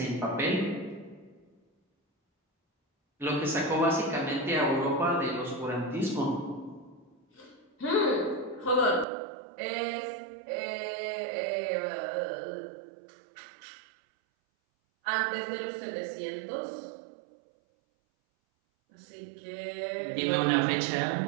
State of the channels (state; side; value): drops out; left; at 9.1 s